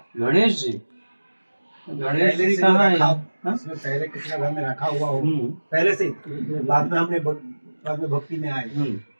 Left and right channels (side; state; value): both; inverted; correlation -1.00